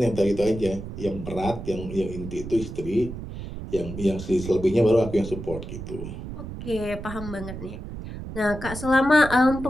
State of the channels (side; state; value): right; noise; rumble, 9 dB below the sound